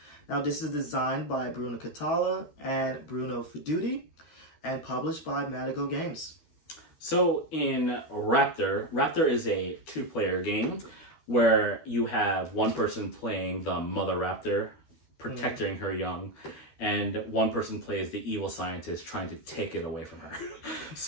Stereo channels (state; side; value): late; right; 12 ms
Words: Now this is designed by Bruno Catala and Bruno Feduti and published by Madigo Games. So in Raptor is a two-player game where you have one person playing the mother raptor, protecting her young, and one person plays the evil scientist trying to take it away from her.